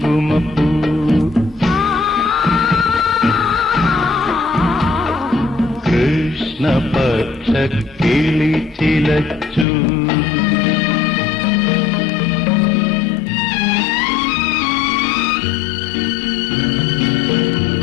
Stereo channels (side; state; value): right; drops out; at 9.7 s